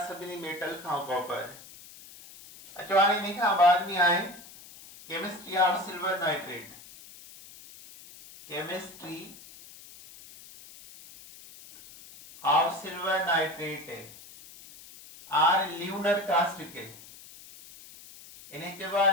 सभिनी मेटल खां कॉपर। अचो हाणे इन खां बाद में आहे chemistry of silver nitrate. Chemistry of silver nitrate or lunar caustic. इन्हें चइबो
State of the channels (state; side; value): noise; left; hiss, 19 dB below the sound